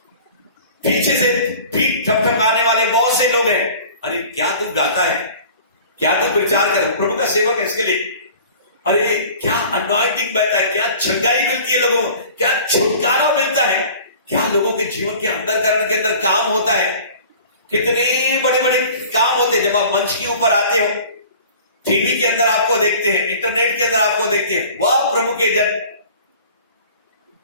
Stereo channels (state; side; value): inverted; both; correlation -0.45